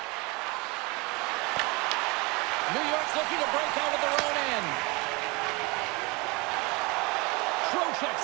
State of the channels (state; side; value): quieter; left; 26.6 dB